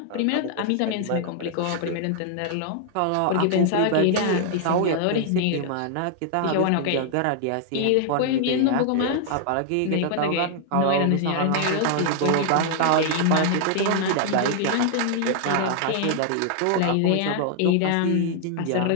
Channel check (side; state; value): both; different; correlation 0.00